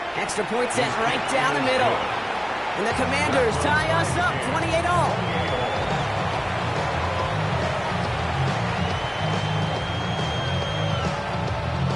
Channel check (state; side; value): identical; both; correlation 1.00